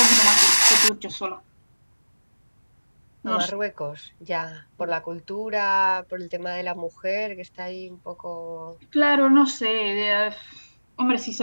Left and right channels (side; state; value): both; inverted; correlation -1.00